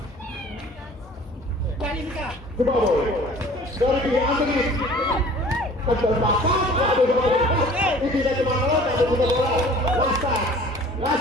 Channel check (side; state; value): both; normal; correlation 0.48